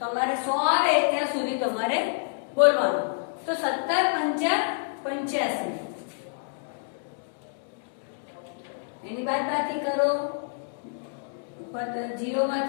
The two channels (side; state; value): right; silent; digital silence